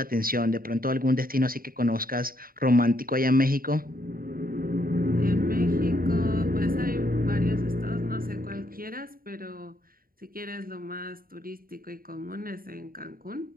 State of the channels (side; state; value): left; late; 0.42 ms